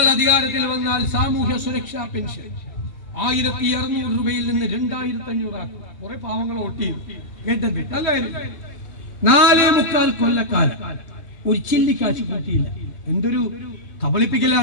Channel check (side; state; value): right; late; 2.9 ms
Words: അധികാരത്തിൽ വന്നാൽ സാമൂഹ്യ സുരക്ഷാ പെൻഷൻ 1600 രൂപയിൽ നിന്ന് 2500 ആക്കും. കുറെ പാവങ്ങൾ വോട്ട് ചെയ്യും. കേട്ടത് അല്ലായിരുന്നു. 4.25 കൊല്ലക്കാലം ഒരു ചില്ലിക്കാശ് കൂട്ടിയില്ല. എന്തൊരു